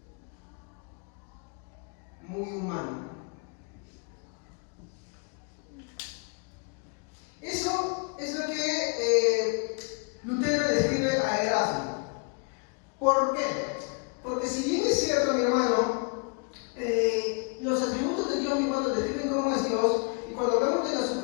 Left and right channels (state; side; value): quieter; right; 35.7 dB